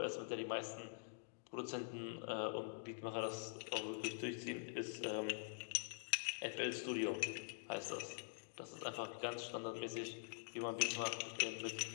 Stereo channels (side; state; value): right; silent; digital silence